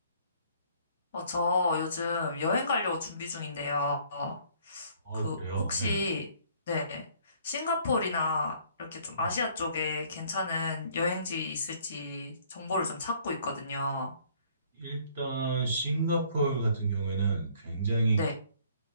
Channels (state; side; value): inverted; both; correlation -0.60